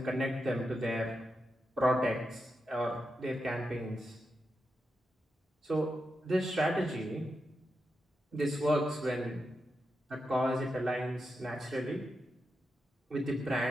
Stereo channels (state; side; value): normal; both; correlation 0.87